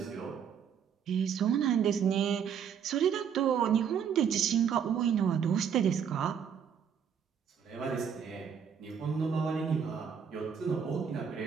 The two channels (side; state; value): left; quieter; 7.7 dB